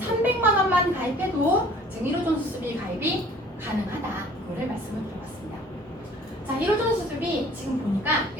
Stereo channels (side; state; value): both; normal; correlation 0.52